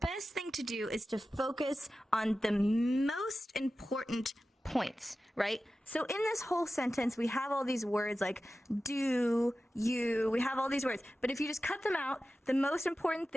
thing to do is to focus on the most important points, right? So in this whole sentence, we have all these words like do, you, we have all these words. But if you just cut them out, the most important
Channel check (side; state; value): both; normal; correlation 0.94